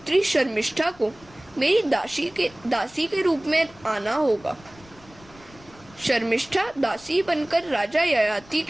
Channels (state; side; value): noise; left; rumble, 25 dB below the sound